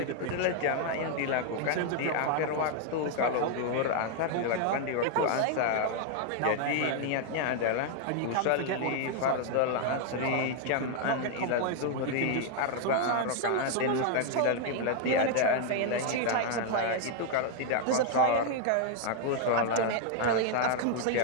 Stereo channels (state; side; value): different; both; correlation 0.00